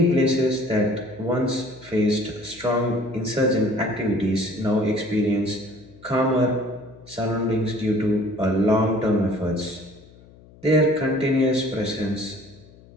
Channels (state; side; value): noise; left; hum, 24 dB below the sound